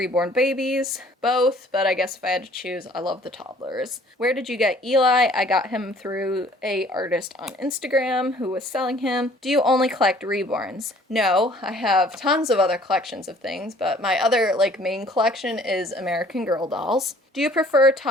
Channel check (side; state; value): both; normal; correlation 0.55